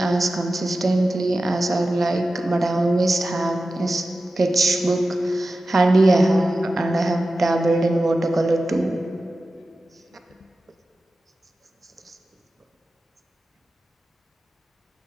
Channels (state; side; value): normal; both; correlation 0.94